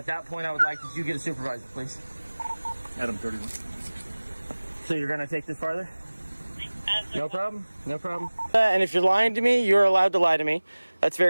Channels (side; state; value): both; inverted; correlation -1.00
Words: that point I would like that you get a supervisor, please. Adam 31. So you're going to take this farther? No problem. No problem. And if you're lying to me, you're allowed to lie to me. That's